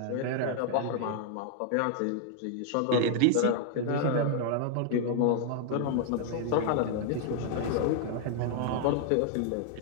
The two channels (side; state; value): both; different; correlation -0.01